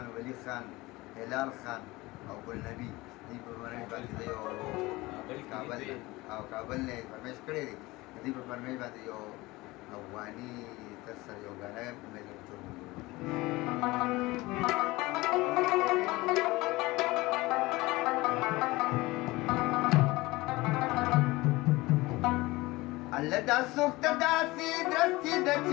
ولی خان هلال خان او ګلنبي دوی په فرمیش باندې د یو کابل نه فرمیش کړی دی دوی په فرمیش باندې یو افغاني تر سره یو ګانا امید لرم ټول الله دا سوخت داسې درستې د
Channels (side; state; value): right; quieter; 20.9 dB